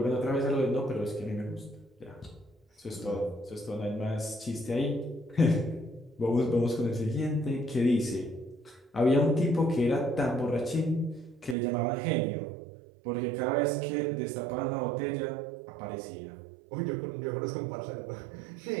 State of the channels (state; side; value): drops out; left; at 11.6 s